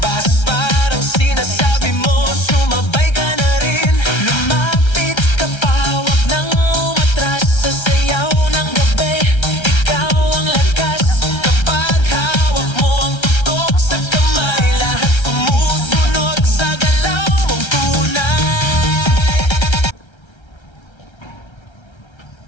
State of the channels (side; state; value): right; late; 1.3 ms